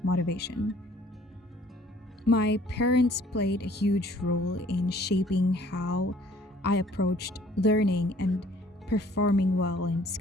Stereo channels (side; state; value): both; normal; correlation 0.57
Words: motivation. My parents played a huge role in shaping how I approached learning and performing well in